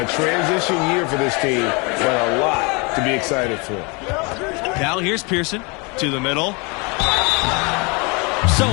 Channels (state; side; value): quieter; right; 30.0 dB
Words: transition year for this team, but a lot to be excited for. Now here's Pearson to the middle. So